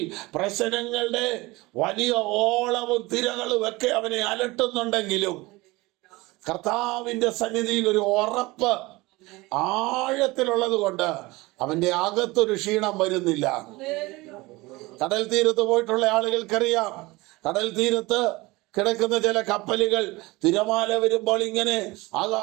പ്രശ്നങ്ങളുടെ വലിയ ഓളവും തിരകളും ഒക്കെ അവനെ അലട്ടുന്നുണ്ടെങ്കിലും കർത്താവിന്റെ സന്നിധിയിൽ ഒരു ഉറപ്പ് ആഴത്തിലുള്ളത് കൊണ്ട് അവന്റെ അകത്തൊരു ക്ഷീണം വരുന്നില്ല. കടൽ തീരത്ത് പോയിട്ടുള്ള ആളുകൾക്കറിയാം, കടൽ തീരത്ത് കിടക്കുന്ന ചില കപ്പലുകൾ തിരമാല വരുമ്പോൾ ഇങ്ങനെ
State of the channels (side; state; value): left; quieter; 21.8 dB